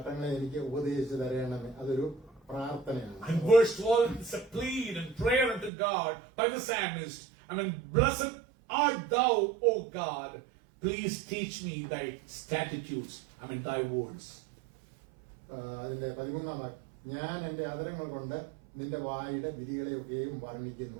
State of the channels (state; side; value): drops out; left; at 5.7 s